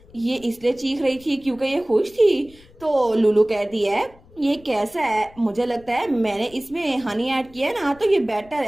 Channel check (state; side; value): noise; left; rumble, 25 dB below the sound